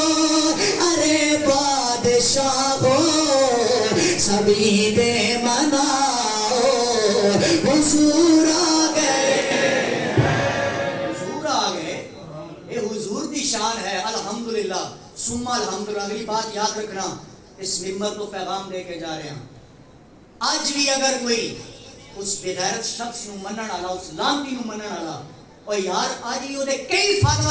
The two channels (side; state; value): both; identical; correlation 1.00